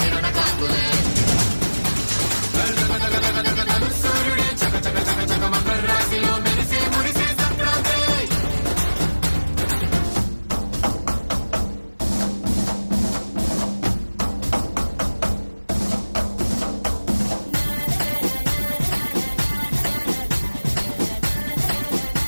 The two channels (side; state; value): both; inverted; correlation -1.00